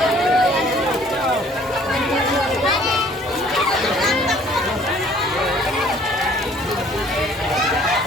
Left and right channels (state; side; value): normal; both; correlation 0.56